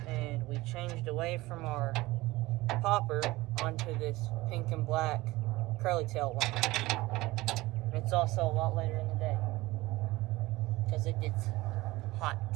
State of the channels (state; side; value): quieter; left; 19.6 dB